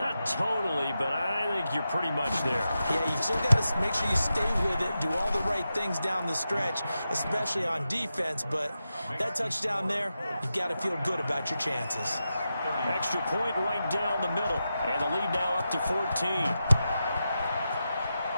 totally, but I think you're pretty much there. Yeah, you've still got to make sure you stay with it, do all the right things down the stretch, especially on defense. But that touchdown there, you've got to feel good about your chances. Extra point right down the middle. And the lead now up to 14.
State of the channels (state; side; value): inverted; both; correlation -0.90